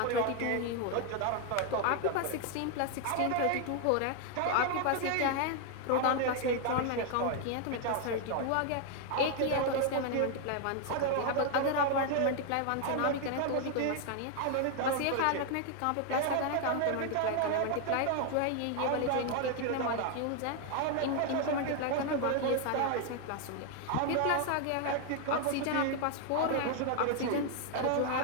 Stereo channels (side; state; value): both; different; correlation 0.00